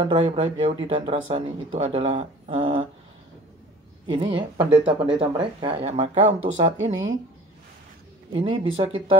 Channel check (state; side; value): normal; both; correlation 0.45